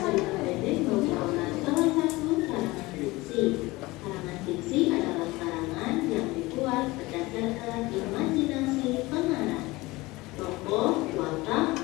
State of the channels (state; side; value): quieter; right; 21.1 dB